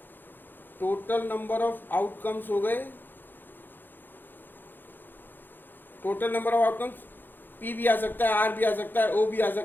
हो गए, total number of outcomes P भी आ सकता है, R भी आ सकता है, O भी आ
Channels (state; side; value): late; right; 0.093 ms